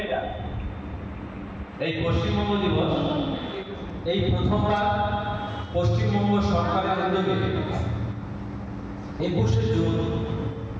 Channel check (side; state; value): both; identical; correlation 1.00